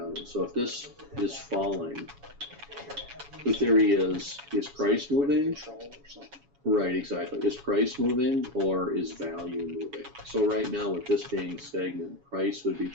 So if this is falling, the theory is price moving? Control or something. Right, exactly. Is price moving or is value moving? So right now with this being stagnant, price would be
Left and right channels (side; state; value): left; late; 7.1 ms